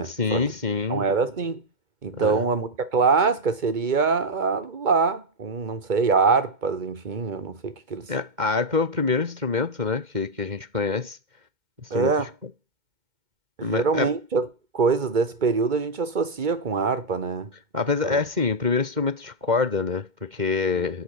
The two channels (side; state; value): left; late; 2.1 ms